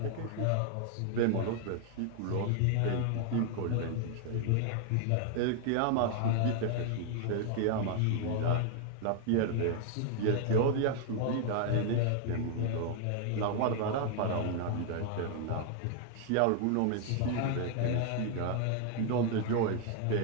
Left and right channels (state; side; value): different; both; correlation 0.00